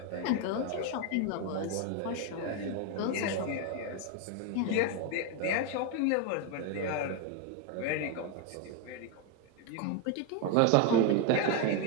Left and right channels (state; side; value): different; both; correlation 0.02